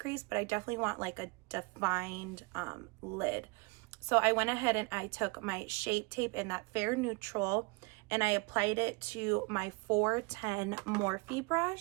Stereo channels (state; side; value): quieter; left; 27.6 dB